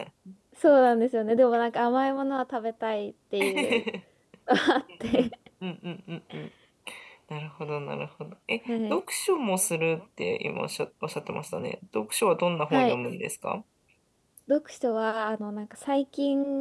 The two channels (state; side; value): identical; both; correlation 1.00